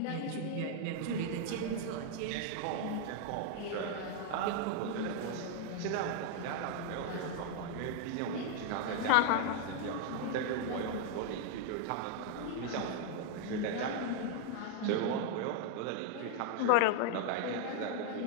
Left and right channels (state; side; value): different; both; correlation 0.00